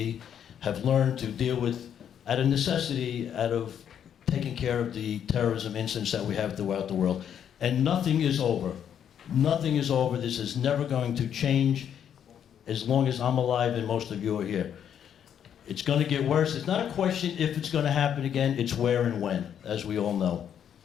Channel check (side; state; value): right; quieter; 9.0 dB